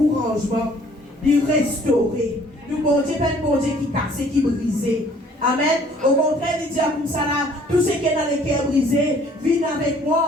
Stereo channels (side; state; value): both; normal; correlation 0.58